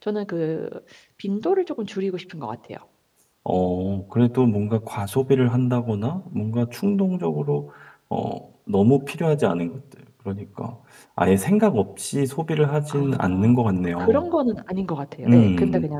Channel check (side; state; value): both; identical; correlation 1.00